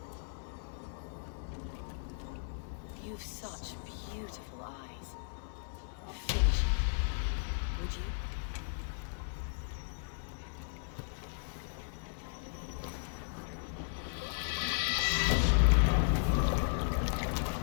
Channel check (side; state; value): right; silent; 54 dB below the other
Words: You've such beautiful eyes. Finish it, would you?